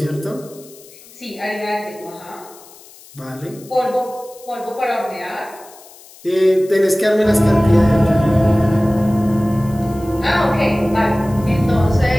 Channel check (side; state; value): left; noise; hiss, 22 dB below the sound